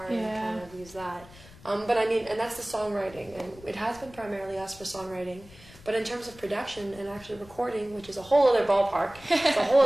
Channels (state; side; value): noise; left; rumble, 21 dB below the sound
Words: and Yeah. kind of use that. But I mean, and that's the songwriting, and it has been primarily us for songwriting. But in terms of production and actually recording, which is a whole other ballpark, it's a whole